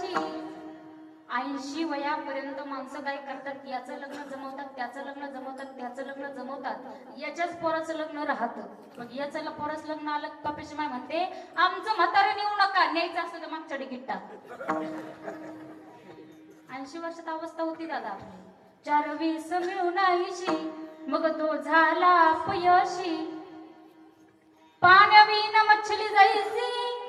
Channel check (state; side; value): identical; both; correlation 1.00